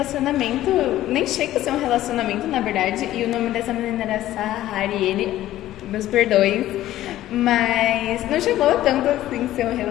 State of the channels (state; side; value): quieter; right; 14.1 dB